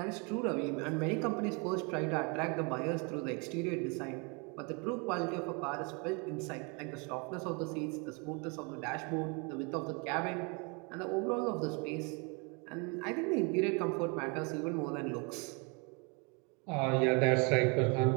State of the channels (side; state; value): left; quieter; 32.5 dB